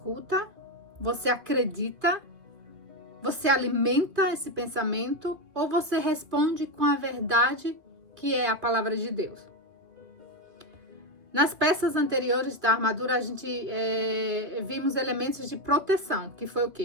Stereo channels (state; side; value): late; left; 2.5 ms